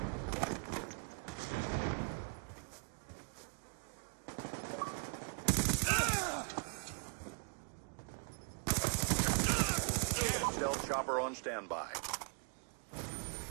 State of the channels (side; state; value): left; quieter; 39.3 dB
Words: Stealth chopper on standby.